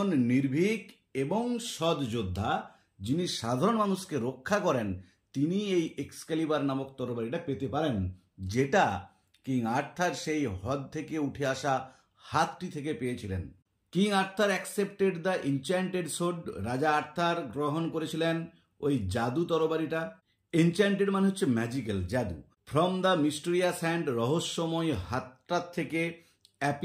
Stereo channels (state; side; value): identical; both; correlation 1.00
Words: নির্ভীক এবং সৎ যোদ্ধা যিনি সাধারণ মানুষকে রক্ষা করেন, তিনি এই এক্সক্যালিবার নামক তরবারিটা পেতে পারেন, যেটা কিং আর্থার সেই হ্রদ থেকে উঠে আসা হাতটি থেকে পেয়েছিলেন। King Arthur accepted the enchanted sword, রাজা আর্থার গ্রহণ করেছিলেন ওই জাদু তরবারিটা। এনচ্যান্টেড মানে হচ্ছে ম্যাজিক্যাল, জাদু। ফ্রম দ্য মিস্টেরিয়াস হ্যান্ড, রহস্যময় হাতটার থেকে।